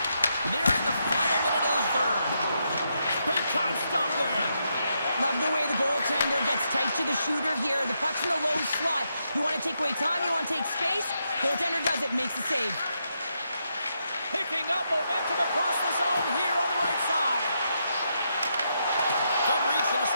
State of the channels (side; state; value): both; inverted; correlation -0.81